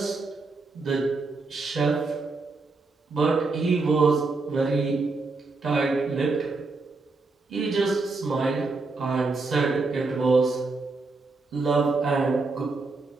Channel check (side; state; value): left; quieter; 3.7 dB